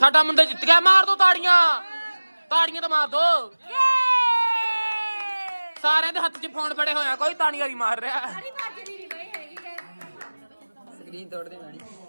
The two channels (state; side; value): inverted; both; correlation -1.00